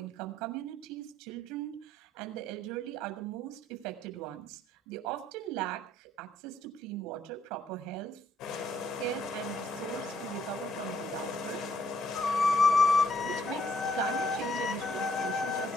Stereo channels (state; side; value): normal; both; correlation 0.69